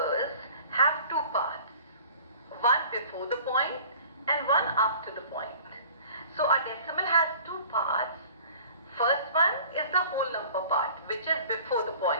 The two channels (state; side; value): inverted; both; correlation -0.47